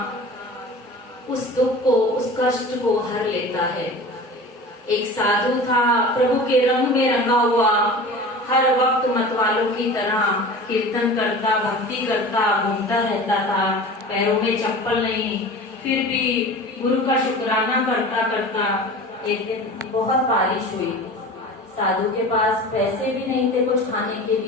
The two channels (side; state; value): both; normal; correlation 0.36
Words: उस दुख को, उस कष्ट को हर लेता है। एक साधु था, प्रभु के रंग में रंगा हुआ, हर वक्त मतवालों की तरह कीर्तन करता, भक्ति करता, घूमता रहता था, पैरों में चप्पल नहीं, फिर भी गुरु का शुक्राना करता करता एक दिन बहुत बारिश हुई। साधु के पास पैसे भी नहीं थे कुछ खाने के